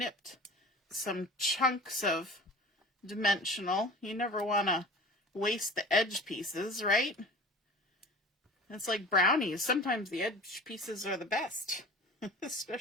some chunks of dimensional. You never want to waste the edge pieces, right? It's like brownies. Sometimes the edge pieces are the best,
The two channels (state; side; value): normal; both; correlation 0.39